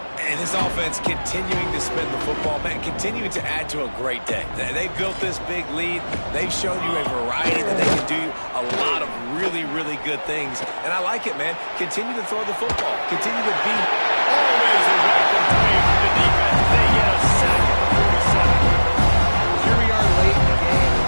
And this offense continuing to spin the football, man, continuing to add to a great day. They've built this big lead. They've shown you a variety that they can do a lot of really, really good things. And I like it, man. Continue to throw the football. Continue to be. Always a welcome play from the defense. They get a sack at the 47. Here we are late in the game. In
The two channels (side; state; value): both; inverted; correlation -1.00